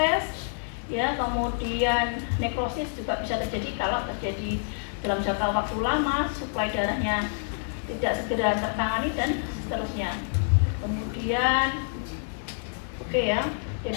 ya, kemudian nekrosis juga bisa terjadi kalau terjadi dalam jangka waktu lama, suplai darahnya tidak segera tertangani dan seterusnya. Kemudian ya,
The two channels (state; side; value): silent; right; digital silence